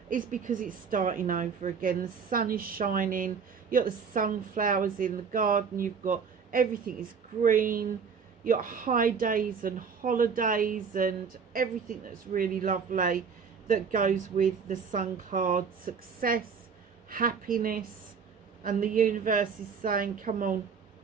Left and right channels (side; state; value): left; quieter; 6.1 dB